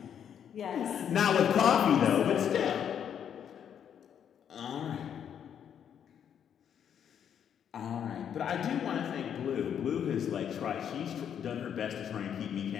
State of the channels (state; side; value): quieter; right; 8.7 dB